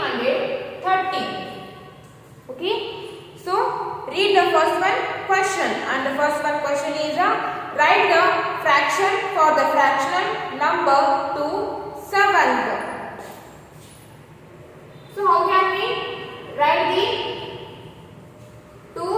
Okay. So read the first one question, and the first one question is write the fraction for the fractional number to 7th. So how can we write the 2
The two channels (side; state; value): both; identical; correlation 1.00